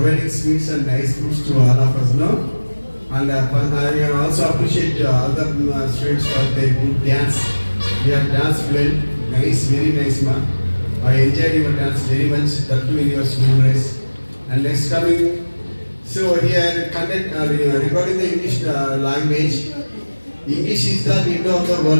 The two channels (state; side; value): inverted; both; correlation -1.00